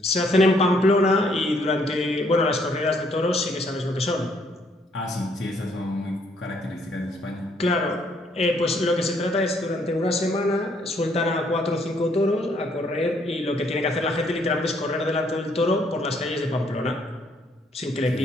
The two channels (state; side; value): normal; both; correlation 0.68